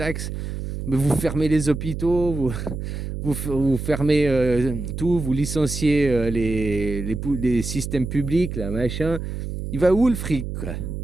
Mais vous fermez les hôpitaux, vous fermez tout, vous licenciez les systèmes publics, là, machin. Il va où le fric, quoi?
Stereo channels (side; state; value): right; noise; hum, 6 dB below the sound